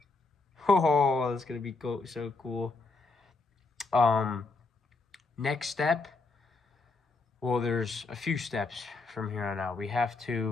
Oh, that's gonna be so cool. Next step, well, there's a few steps from here on out. We have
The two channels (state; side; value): quieter; right; 3.7 dB